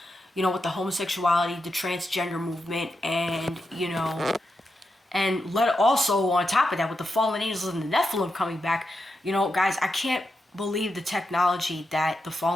you know, with the homosexuality, the transgender movement, and, you know, and also on top of that, with the fallen angels and the Nephilim coming back, you know, guys, I can't believe the technology that the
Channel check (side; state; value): both; normal; correlation 0.87